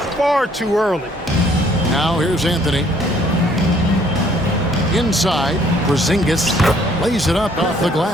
far too early. Now here's Anthony. Inside, Porzingis lays it up off the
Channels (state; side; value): normal; both; correlation 0.62